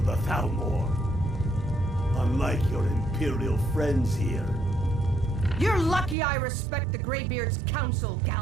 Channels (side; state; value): left; drops out; at 6.2 s